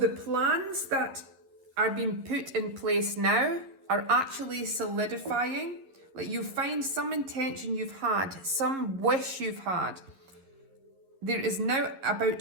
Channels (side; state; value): left; late; 11 ms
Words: plans that are being put in place now are actually solidifying. Like, you find some intention you've had, some wish you've had. There is now about